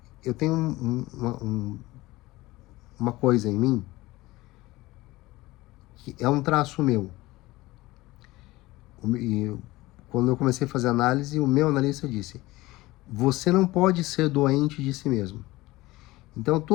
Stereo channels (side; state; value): right; quieter; 19.3 dB